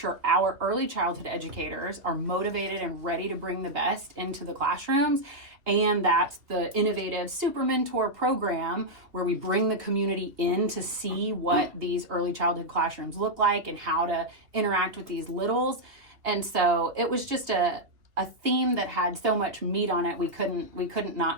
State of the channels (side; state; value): left; late; 2.8 ms